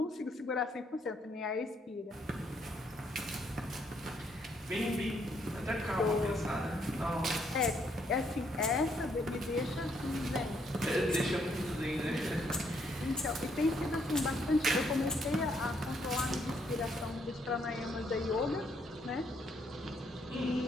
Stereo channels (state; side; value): normal; both; correlation 0.71